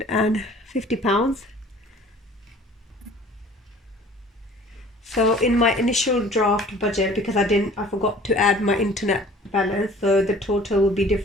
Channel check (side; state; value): both; normal; correlation 0.49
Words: So in my initial draft budget, because I forgot to add my internet balance, so the total will be